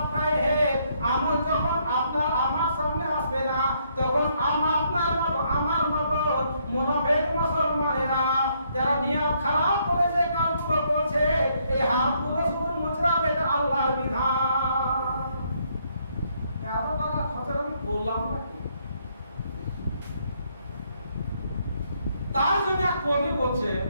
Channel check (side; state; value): both; inverted; correlation -0.71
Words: আমল যখন আপনার আমার সামনে আসবে না, তখন আপনার মতো আমার মতো মুনাফিক মুসলমানেরা যারা নিয়ত খারাপ করে যে কাজগুলো করছে, এই হাতগুলো শুধু মুচড়াবে, এটা আল্লাহর বিধান। এত টাকা খরচ আমি বললাম না। তার জন্য এক কবি বলছে,